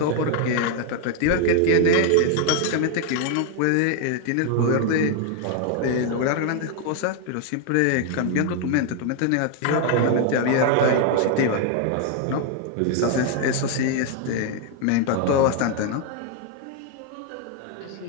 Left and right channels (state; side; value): different; both; correlation 0.00